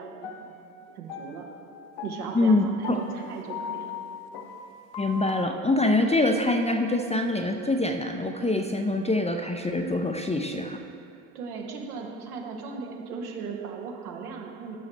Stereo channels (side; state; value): both; normal; correlation 0.52